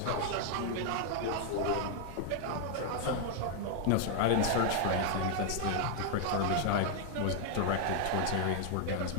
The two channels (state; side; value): different; both; correlation 0.00